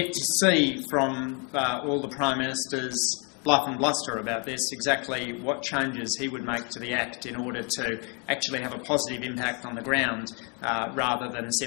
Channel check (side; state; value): right; quieter; 35.1 dB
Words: to see from all the Prime Minister's bluff and bluster about this exactly what changes he would make to the Act in order to actually have a positive impact on the ground rather than